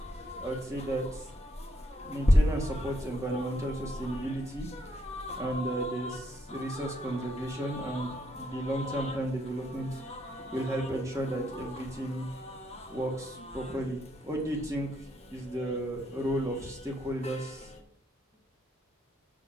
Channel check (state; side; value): normal; both; correlation 0.74